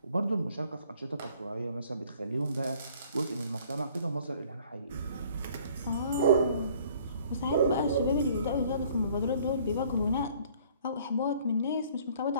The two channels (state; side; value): inverted; both; correlation -0.57